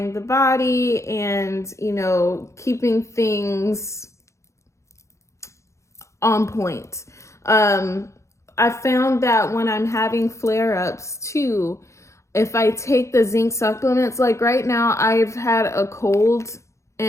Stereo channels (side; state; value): right; late; 0.14 ms